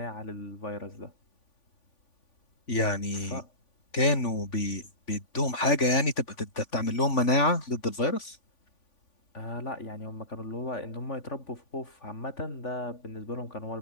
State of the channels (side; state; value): right; late; 3.5 ms